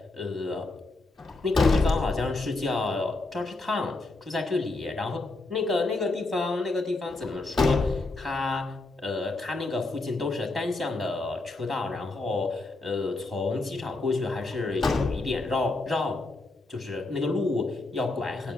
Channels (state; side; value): quieter; right; 3.2 dB